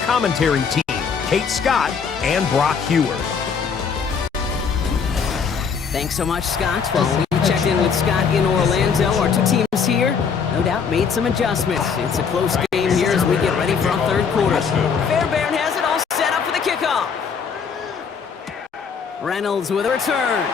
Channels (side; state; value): right; quieter; 6.2 dB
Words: team, Kate Scott and Brock Hewer. Thanks so much, Scott. Well, we checked in with Scott in Orlando. Our 2 teams here, no doubt, made some adjustments. It's a close game here as we get ready for our 3rd quarter. Fairbairn has it all set up for the kickoff. Reynolds with a return.